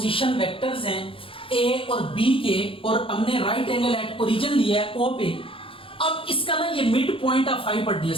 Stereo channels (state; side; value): late; right; 0.26 ms